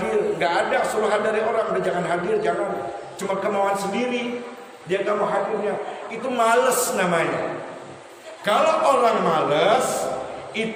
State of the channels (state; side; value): identical; both; correlation 1.00